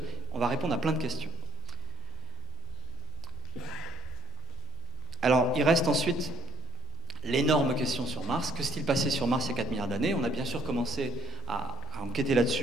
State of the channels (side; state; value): both; normal; correlation 0.62